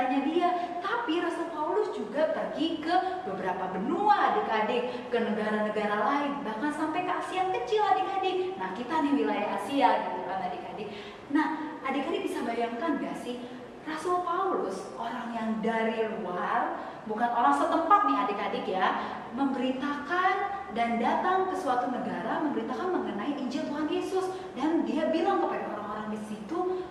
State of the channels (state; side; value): identical; both; correlation 1.00